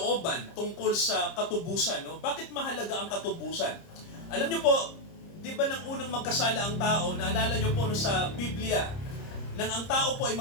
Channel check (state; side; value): late; right; 30 ms